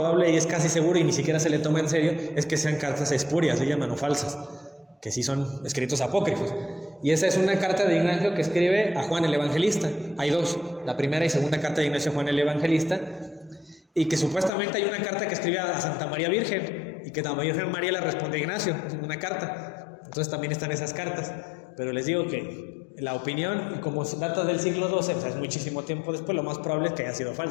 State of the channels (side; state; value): right; drops out; at 14.5 s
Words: y es casi seguro y ni siquiera se le toma en serio es que sean cartas espurias, se llaman, o falsas, que sí son escritos apócrifos. Y esa es una carta de Ignacio que escribe a Juan el Evangelista. Hay dos, la primera y segunda carta de Ignacio a Juan el Evangelista, y que supuestamente hay una carta que escribe a Santa María Virgen, y que la Virgen María le responde a Ignacio, una carta. Entonces también están esas cartas. Pero les digo que la opinión, y como data del siglo XII, o sea, es muchísimo tiempo después, lo más probable es que hayan sido